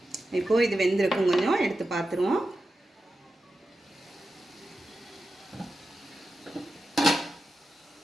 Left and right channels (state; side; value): normal; both; correlation 0.91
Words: இப்போது இது வெந்திருக்கும். கொஞ்சம் எடுத்து பார்த்துருவோம்.